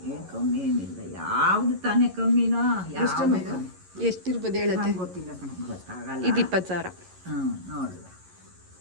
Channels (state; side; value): late; left; 11 ms